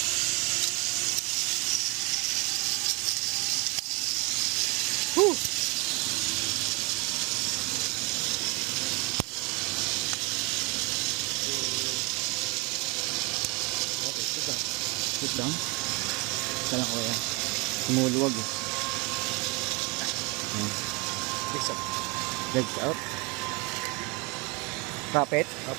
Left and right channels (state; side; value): quieter; left; 28.5 dB